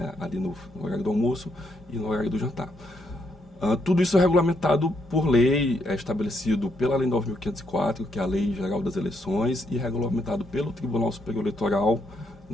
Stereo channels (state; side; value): normal; both; correlation 0.76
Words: ali no horário do almoço e no horário do jantar. Tudo isso é regulamentado por lei, é estabelecido pela Lei 9.504, que é a Lei Geral das Eleições, e regulamentado pelo Tribunal Superior Eleitoral